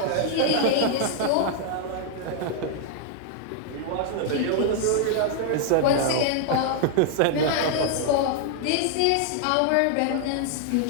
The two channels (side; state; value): both; different; correlation 0.00